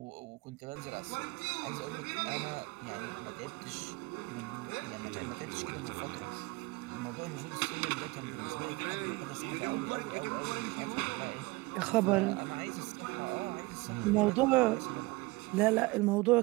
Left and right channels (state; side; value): quieter; left; 22.8 dB